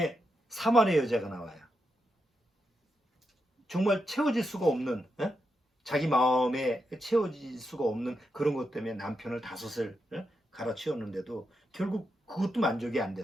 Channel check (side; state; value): both; normal; correlation 0.85